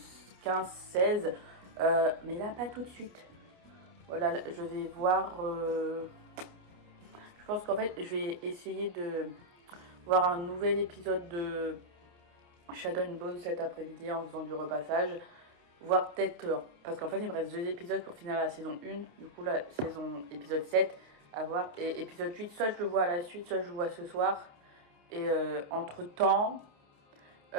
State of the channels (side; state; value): left; late; 29 ms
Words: 15-16. Mais là, pas tout de suite. Voilà, je vais voir. Je pense qu'en fait, je vais essayer de voir un nouvel épisode de Shadow and Bone cet après-midi en faisant du repassage. Voir peut-être. Parce qu'en fait, il me reste 2 épisodes pour finir la saison 1. Du coup, la saison épisode 7 à voir. Et épisode 8, soit je le vois à la suite, soit je le vois ce soir. Et entre-temps,